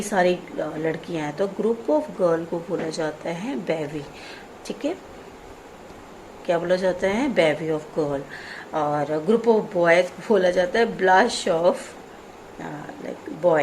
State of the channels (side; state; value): both; identical; correlation 1.00